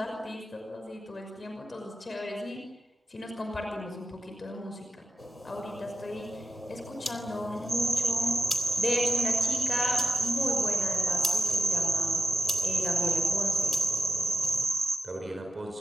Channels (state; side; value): normal; both; correlation 0.86